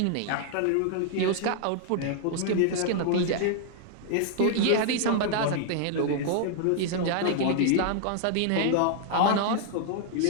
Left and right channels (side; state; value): both; different; correlation -0.01